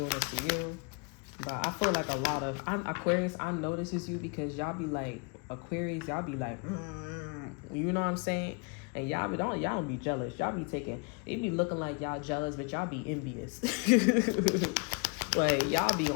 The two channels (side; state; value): right; quieter; 33.7 dB